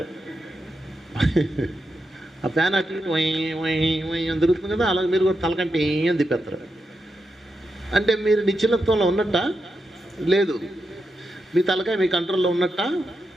ఆ ఫ్యాన్ అటు ఇటు అని తిరుగుతుంది కదా, అలాగే మీరు కూడా తలకంటే ఏం తిప్పేస్తారు. అంటే మీరు నిశ్చలత్వంలో ఉన్నట్ట లేదు, మీ తలకాయ మీ కంట్రోల్లో ఉన్నట్ట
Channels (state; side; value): normal; both; correlation 0.86